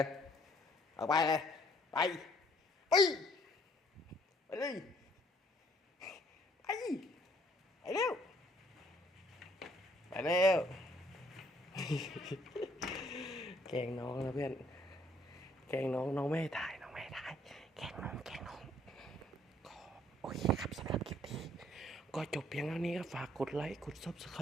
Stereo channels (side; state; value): both; normal; correlation 0.63